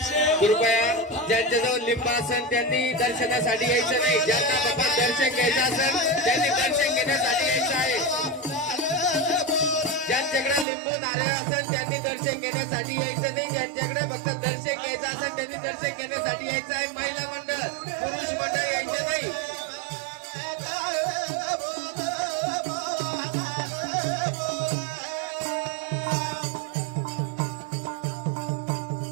कृपया ज्यांच्याजवळ लिंब असेल त्यांनी दर्शनासाठी यायचं नाही ज्यांना बाबा दर्शन घ्यायचं असेल त्यांनी दर्शन घेण्यासाठी यायचं आहे ज्यांच्याकडे लिंबू नारळ असेल त्यांनी दर्शन घेण्यासाठी यायचं नाही ज्यांच्याकडे फक्त दर्शन घ्यायचं असेल त्यांनी दर्शन घेण्यासाठी यायचं आहे महिला मंडळ पुरुष मंडळ यायचं नाही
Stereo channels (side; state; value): left; drops out; at 10.7 s